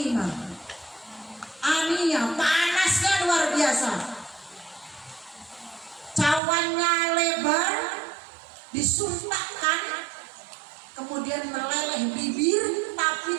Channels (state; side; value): drops out; left; at 6.4 s